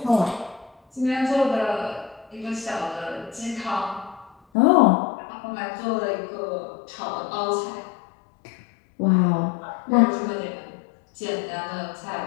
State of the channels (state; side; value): drops out; right; at 4.4 s